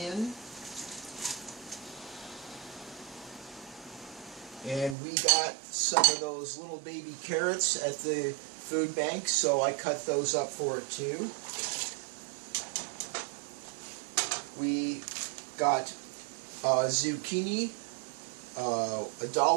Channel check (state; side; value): drops out; left; at 5.0 s